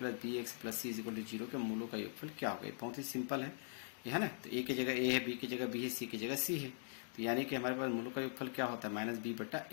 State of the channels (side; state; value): right; silent; digital silence